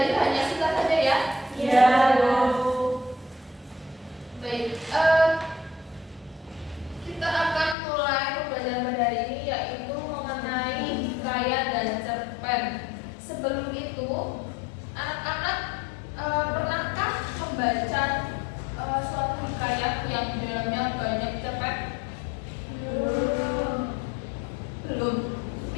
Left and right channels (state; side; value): drops out; right; at 7.8 s